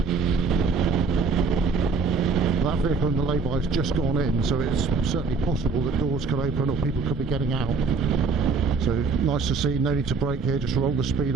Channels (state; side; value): quieter; left; 4.6 dB